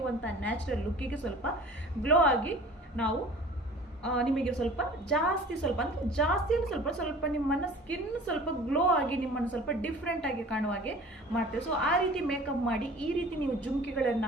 ನ್ಯಾಚುರಲ್ ಲುಕ್ಕಿಗೆ ಸ್ವಲ್ಪ ಗ್ಲೋ ಆಗಿ ನಾವು ನಿಮಗೆ ಸ್ವಲ್ಪ ನಿಮ್ಮನ್ನು ಸ್ಕಿನ್ ಸ್ವಲ್ಪ ಗ್ಲೋ ಆಗಿ ನಿಮ್ಮನ್ನು ಸ್ವಲ್ಪ ಡಿಫ್ರೆಂಟ್ ಆಗಿ ಕಾಣುವ ಹಾಗೆ ಮಾಡ್ತೇವೆ. ಸೊ ಆ ರೀತಿ ಮೇಕಪ್ ಮಾಡಿ ಈ ರೀತಿ ನೀವು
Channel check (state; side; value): normal; both; correlation 0.44